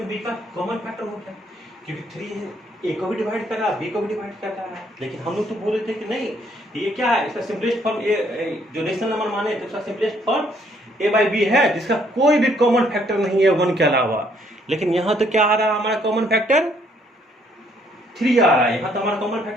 बी का कॉमन फैक्टर हो गया, क्योंकि 3 ए को भी डिवाइड कर रहा है, बी को भी डिवाइड कर रहा है। लेकिन हम लोग तो बोले थे कि नहीं, ये क्या है, इसका सिंपलेस्ट फॉर्म जो रेशनल नंबर माने तो इसका simplest form a by b है, जिसका कोई भी कॉमन फैक्टर नहीं है 1 के अलावा। लेकिन यहाँ तो क्या आ रहा है, हमारा कॉमन फैक्टर 3 आ रहा है। यहाँ तो हमारा कॉमन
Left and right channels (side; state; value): both; normal; correlation 0.67